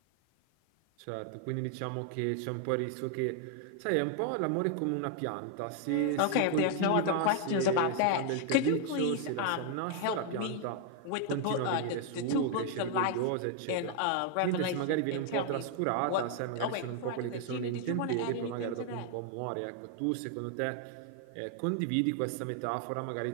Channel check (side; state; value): both; different; correlation 0.00